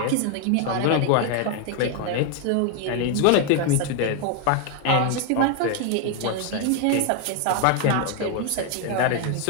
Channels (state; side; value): different; both; correlation 0.01